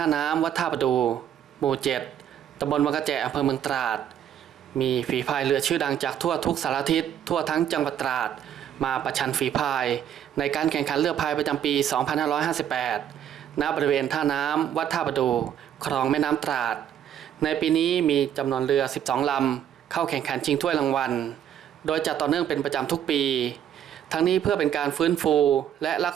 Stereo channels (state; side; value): quieter; left; 9.9 dB